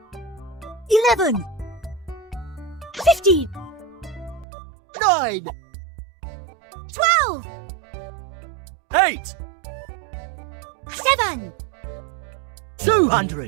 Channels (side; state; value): left; drops out; at 4.5 s